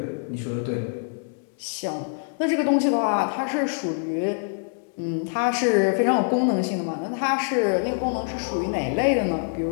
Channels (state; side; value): silent; right; 62 dB below the other